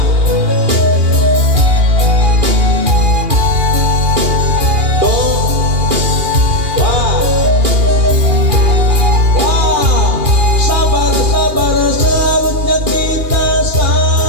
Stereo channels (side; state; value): left; late; 2.8 ms